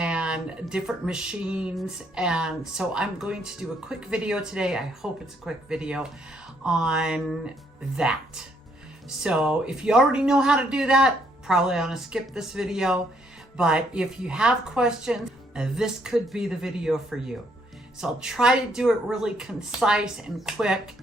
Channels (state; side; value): normal; both; correlation 0.70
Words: different machines. And so I'm going to do a quick video today. I hope it's a quick video on that. So if you already know how to do that, probably want to skip this video. But if you have questions, this could be the video for you. So I'll try to do it really concise and quick